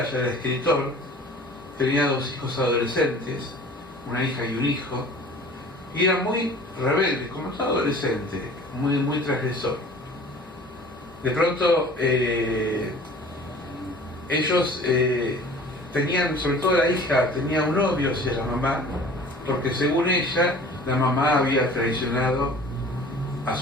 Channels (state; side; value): normal; both; correlation 0.46